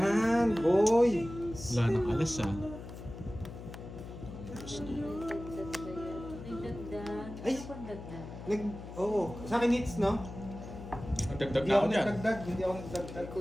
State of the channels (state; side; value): noise; left; hum, 12 dB below the sound